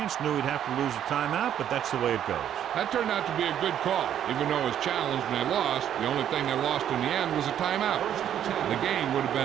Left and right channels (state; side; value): quieter; left; 10.1 dB